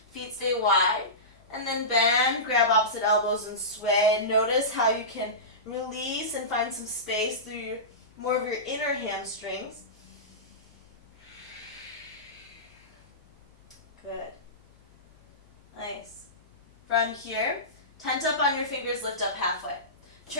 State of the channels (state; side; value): noise; left; hum, 29 dB below the sound